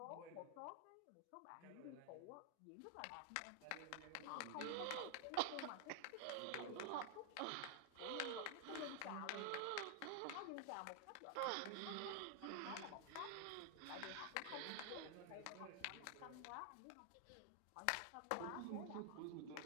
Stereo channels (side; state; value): both; different; correlation 0.00